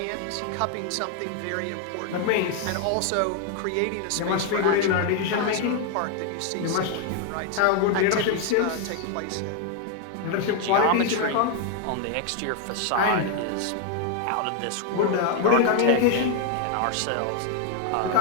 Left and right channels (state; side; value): different; both; correlation 0.00